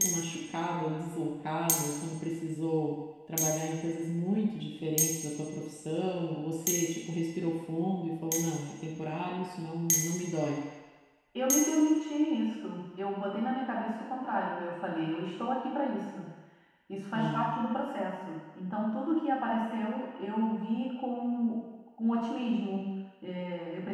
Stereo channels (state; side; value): identical; both; correlation 1.00